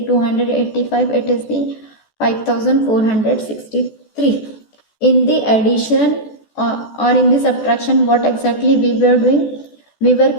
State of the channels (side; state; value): right; late; 14 ms